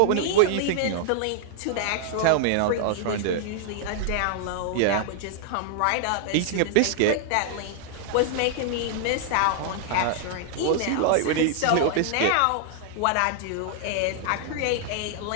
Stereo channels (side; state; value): both; different; correlation 0.00